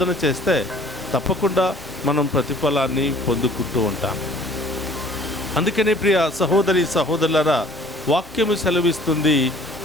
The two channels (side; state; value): both; normal; correlation 0.53